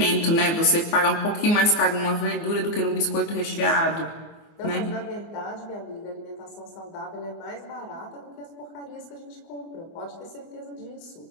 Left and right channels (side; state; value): right; late; 24 ms